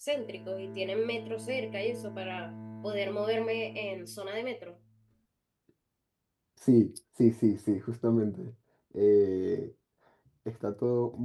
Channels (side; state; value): both; identical; correlation 1.00